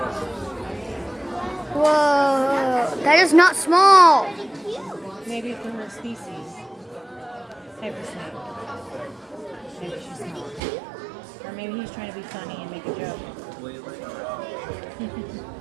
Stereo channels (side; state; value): left; drops out; at 10.6 s